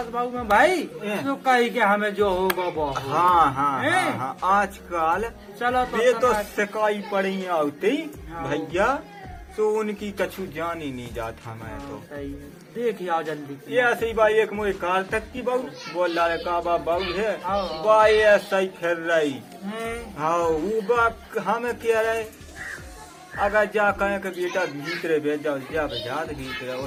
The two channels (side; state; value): both; identical; correlation 1.00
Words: बाबू में भाई तो कही के हमें जो होगा वो होगा। हाँ आजकल चलो ये तो तनक- सिकाई पड़ी आती हाँ। भैया तो उनकी कछु जान ही नहीं जाता मैं तो। सही है। देख आओ जल्दी। ये ऐसे ही भाई एक मुझे कार तक की बहू बोल रहा है का बहू है हाँ। भाई ऐसा ही फिर रही हैं? हाँ वो बात हमें कह रहे अगर जा कहे के बेटा भीतरे भेज जाओ जा बजा भीतरे और